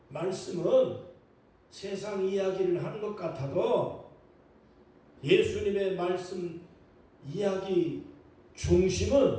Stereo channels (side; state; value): both; identical; correlation 1.00